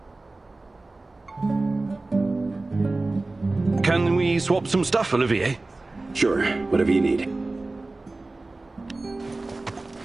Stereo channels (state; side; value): quieter; left; 3.2 dB